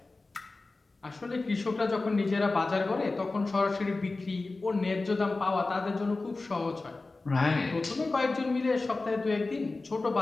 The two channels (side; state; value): right; quieter; 3.4 dB